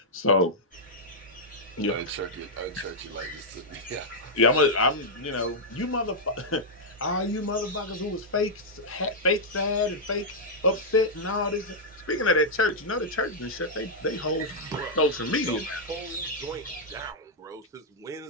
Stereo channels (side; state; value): both; normal; correlation -0.06